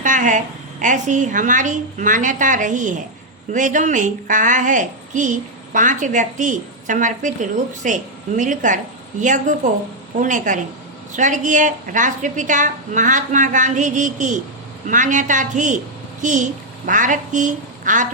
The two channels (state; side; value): normal; both; correlation -0.02